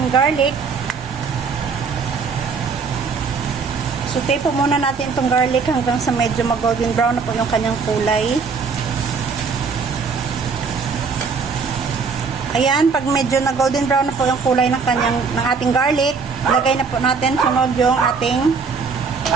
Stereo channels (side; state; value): left; quieter; 5.2 dB